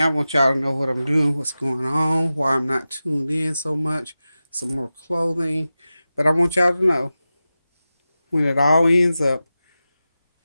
want y'all to know what I'm doing, what's going on, why I'm not tuned in so much, some more clothing. But I want y'all to know, when it all ends up,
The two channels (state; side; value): inverted; both; correlation -0.94